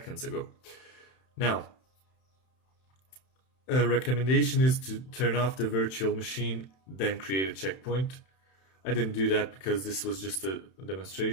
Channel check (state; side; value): late; right; 31 ms